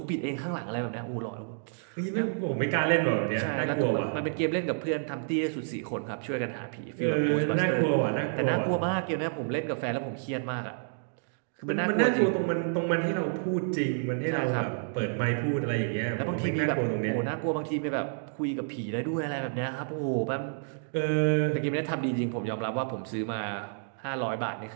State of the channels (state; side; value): silent; left; digital silence